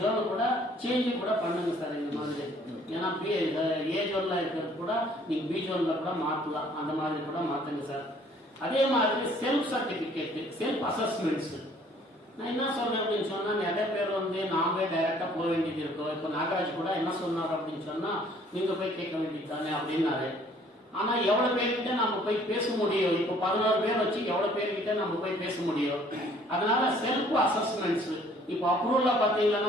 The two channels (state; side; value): normal; both; correlation 0.58